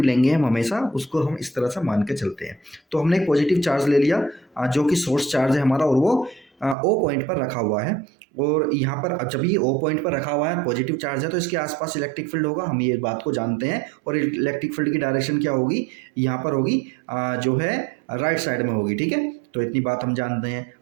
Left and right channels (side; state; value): left; drops out; at 6.8 s